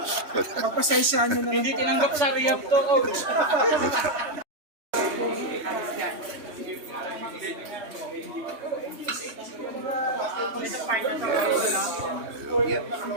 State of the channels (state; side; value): late; left; 3.1 ms